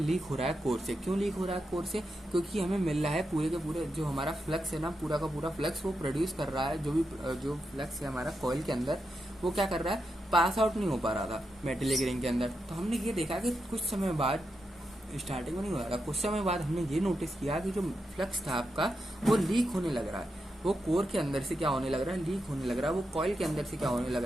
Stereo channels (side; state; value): both; normal; correlation 0.86